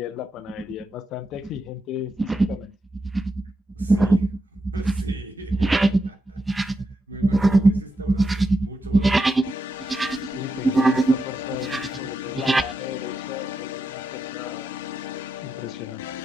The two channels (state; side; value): normal; both; correlation 0.85